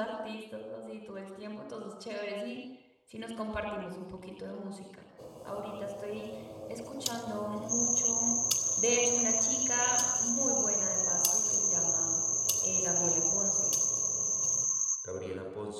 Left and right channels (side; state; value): both; identical; correlation 1.00